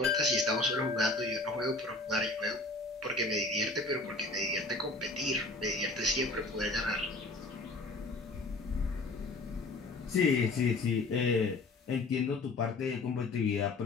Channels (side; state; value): right; quieter; 3.2 dB